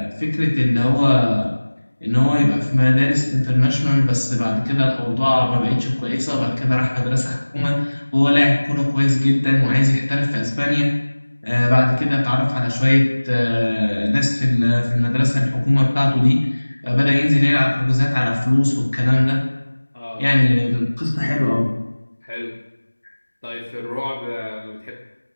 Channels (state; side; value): inverted; both; correlation -1.00